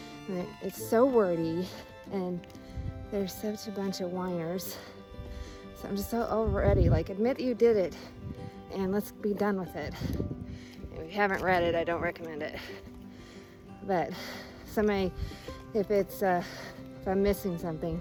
I mean, it's so wordy and there's such a bunch of whiners. So I'm just so already like, admit you did it and let's be done with it. If you haven't read it, I don't recommend it. But somebody, if I'm missing something,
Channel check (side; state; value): both; identical; correlation 1.00